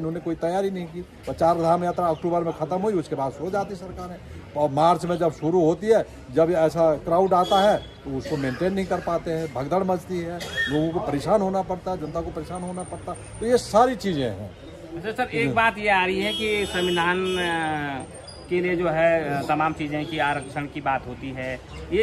कोई तैयारी नहीं की। और 4 धाम यात्रा अक्टूबर में खत्म हुई, उसके बाद सो जाती सरकारें। और मार्च में जब शुरू होती है, जब ऐसा क्राउड आता है तो उसको मेंटेन नहीं कर पाते हैं, भगदड़ मचती है, लोगों को परेशान होना पड़ता है, जनता को परेशान होना पड़ता है। तो ये सारी चीज़ें हैं। अच्छा सर, एक बात ये आ रही है कि संविधान के लिए जो है तमाम चीज़ें की आरक्षण की बात होती है,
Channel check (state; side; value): identical; both; correlation 1.00